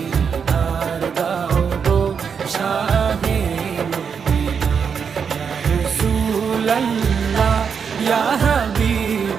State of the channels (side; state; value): left; quieter; 6.5 dB